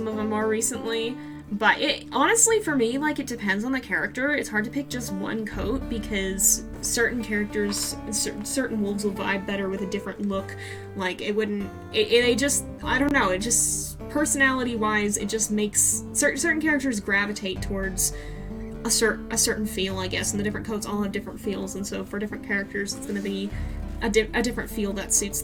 of them more recently. But it honestly, for me, like, it depends on the character. It's hard to pick just one coat because certain characters, certain wolves will vibe better with a different look. Like, it wouldn't. They just, I don't know. It just, personality-wise, it just makes certain characters gravitate towards a certain feel, I guess, and the different coats all have different feels, and so for different characters, it's going to be a different feel that suits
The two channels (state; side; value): identical; both; correlation 1.00